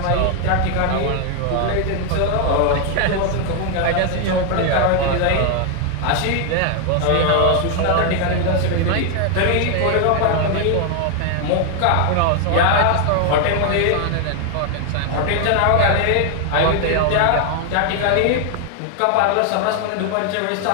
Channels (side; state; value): both; different; correlation 0.00